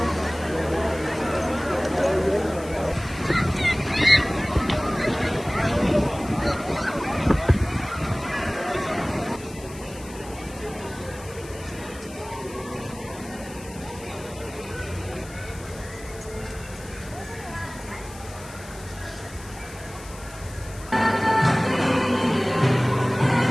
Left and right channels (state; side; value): noise; left; hiss, 18 dB below the sound